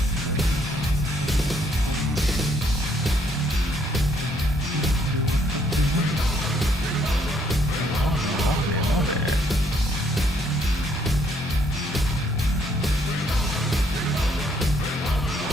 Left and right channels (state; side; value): normal; both; correlation 0.68